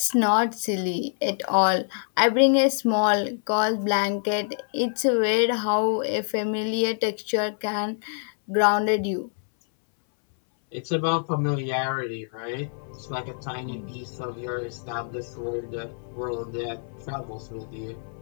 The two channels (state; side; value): silent; right; 61 dB below the other